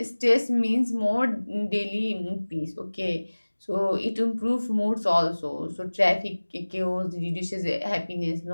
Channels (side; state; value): both; inverted; correlation -1.00